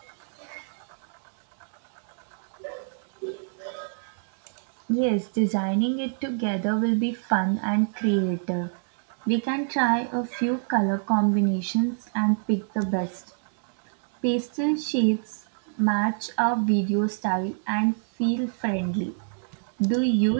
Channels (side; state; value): left; silent; digital silence